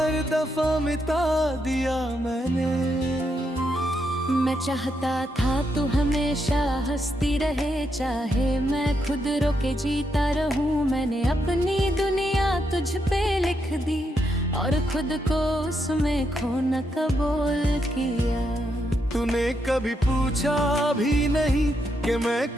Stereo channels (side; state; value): both; normal; correlation 0.80